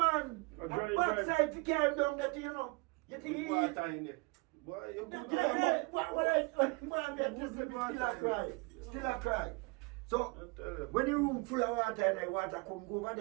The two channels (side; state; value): left; quieter; 27.7 dB